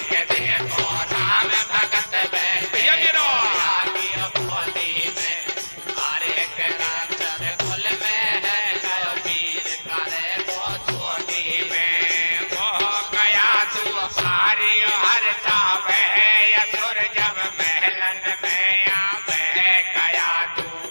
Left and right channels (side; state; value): both; inverted; correlation -1.00